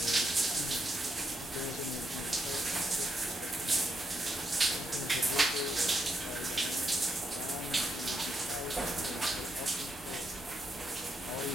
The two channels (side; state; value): both; normal; correlation 0.80